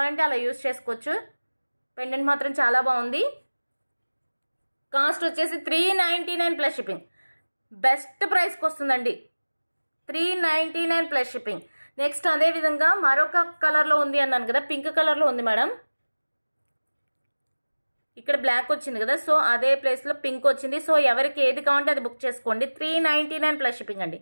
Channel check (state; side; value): inverted; both; correlation -1.00